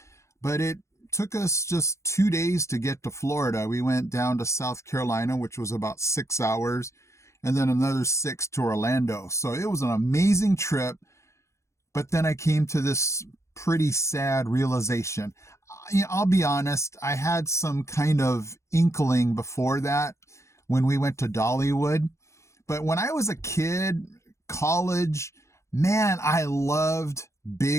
but it took us just 2 days to get to Florida. We went down to South Carolina, which was about 6 hours, and then another 6 to Orlando. So it was an amazing trip. But then I came to this pretty sad realization. I'll be honest, I had some kind of inkling before that when we went to Dollywood. But when I was a kid, college, man, I loved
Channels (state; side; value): late; right; 0.14 ms